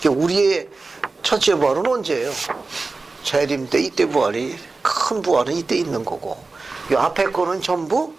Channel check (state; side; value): quieter; left; 3.7 dB